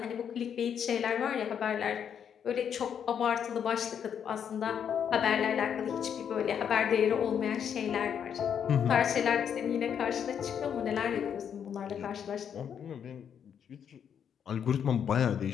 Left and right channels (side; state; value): right; quieter; 8.2 dB